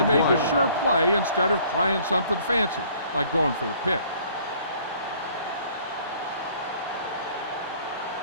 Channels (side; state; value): both; inverted; correlation -0.57